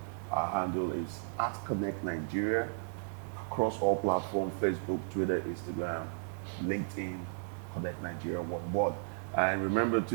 Our handle is @ConnectNigeria across all platforms: Facebook, Twitter, Instagram, LinkedIn. Connect Nigeria one word. And remember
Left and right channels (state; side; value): silent; left; digital silence